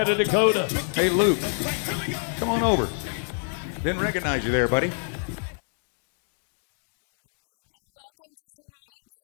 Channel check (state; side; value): silent; right; 60 dB below the other